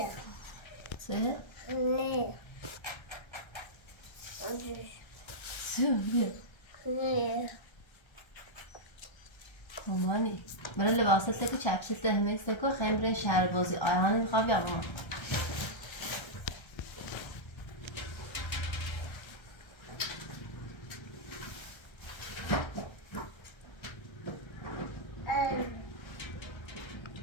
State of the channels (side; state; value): right; late; 1.3 ms